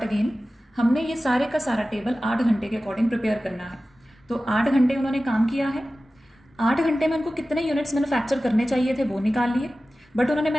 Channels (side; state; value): both; normal; correlation 0.96